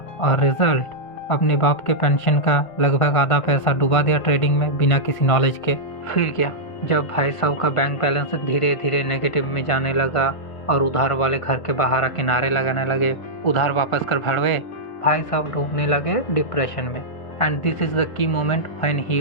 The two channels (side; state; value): right; late; 1.5 ms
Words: और रिजल्ट अपने बाप के पेंशन का लगभग आधा पैसा डुबा दिया ट्रेडिंग में बिना किसी नॉलेज के। फिर क्या, जब भाई साहब का बैंक बैलेंस धीरे धीरे नेगेटिव में जाने लगा और उधार वाले घर के बाहर आके नारे लगाने लगे, उधार वापस कर भड़वे, भाई साहब डूबने लगे डिप्रेशन में। And this is the key moment when